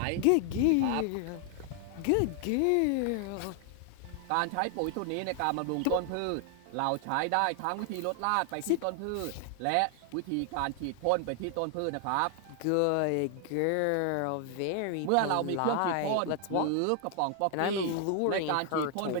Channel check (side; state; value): both; different; correlation 0.00